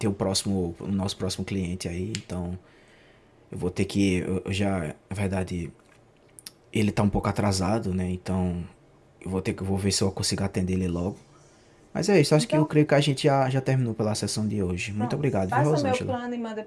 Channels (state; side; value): identical; both; correlation 1.00